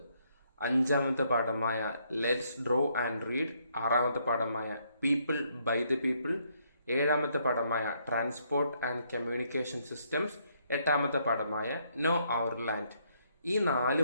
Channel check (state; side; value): inverted; both; correlation -0.72